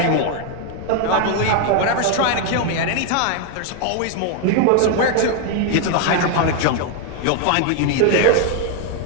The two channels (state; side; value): different; both; correlation 0.00